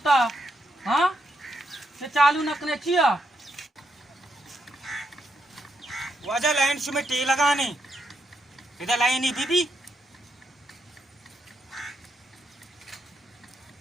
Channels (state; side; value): normal; both; correlation 0.80